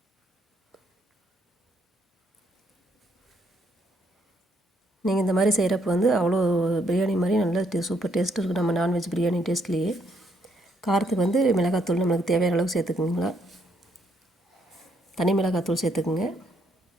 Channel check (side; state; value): both; normal; correlation 0.72